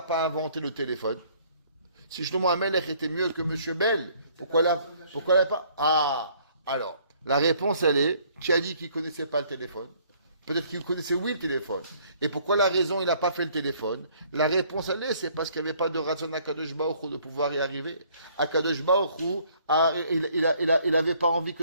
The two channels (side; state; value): both; inverted; correlation -0.61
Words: pas inventé le téléphone? Si Shlomo HaMelech était mieux que Monsieur Bell, pourquoi il n'a pas? Ah, alors. La réponse, elle est, qui a dit qu'il ne connaissait pas le téléphone? Peut-être qu'il connaissait, oui, le téléphone. Et pourquoi la raison, il n'a pas fait le téléphone? La réponse, elle est, c'est parce qu'il n'y avait pas de raison à Akadosh Baruch Hu de pouvoir y arriver. Akadosh Baruch Hu, il n'avait pas envie